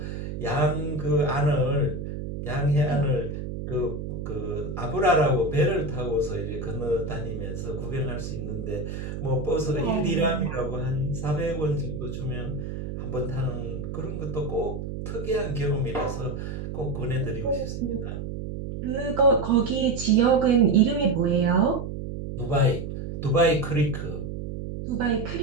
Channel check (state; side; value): noise; right; hum, 6 dB below the sound